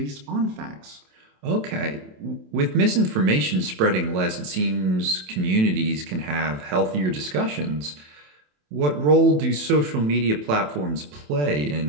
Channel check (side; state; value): left; late; 27 ms